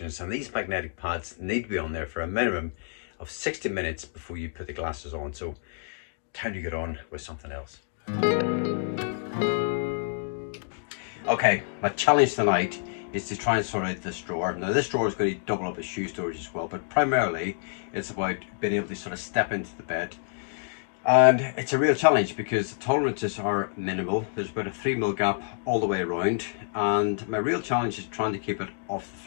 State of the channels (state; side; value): silent; right; digital silence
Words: and these magnetic pads need to be on there for a minimum of 60 minutes before you put the glasses on, so time to get on with something else. Okay, my challenge tonight is to try and sort out this drawer. Now, this drawer is going to double up as shoe storage as well, but primarily it's about being able to sort of step into the bed. And it's a real challenge because the tolerances are minimal. There's about a 3mm gap all the way around, and my real challenge is trying to keep it off the